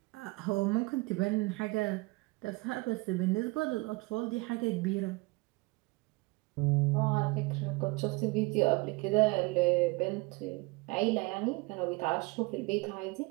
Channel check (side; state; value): left; quieter; 24.8 dB